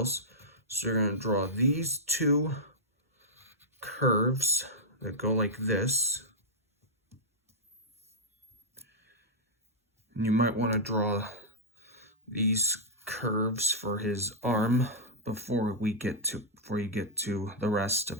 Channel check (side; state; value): both; normal; correlation -0.08